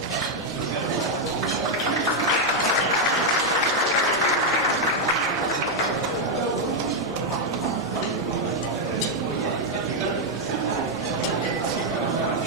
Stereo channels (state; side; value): normal; both; correlation 0.00